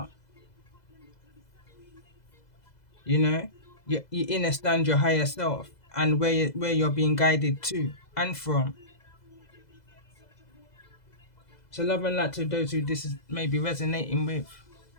You know, you understand your higher self and where you're being guided to and from. So love and light to those who this is maybe resonating with.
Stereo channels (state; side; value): late; right; 2.0 ms